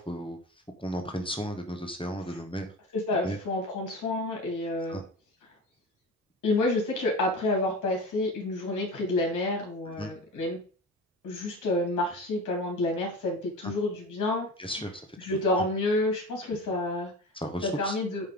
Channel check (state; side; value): normal; both; correlation 0.31